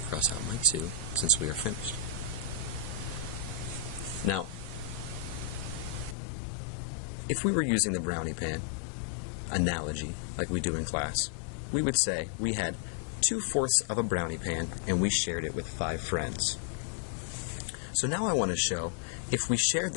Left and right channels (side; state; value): right; drops out; at 6.2 s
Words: cross out my 2 since we are finished. Now, if we were using the brownie pan analogy like we do in class, we would say we had 2/4 of a brownie pan and we shared it with 5 friends. So now I want to show, if we shared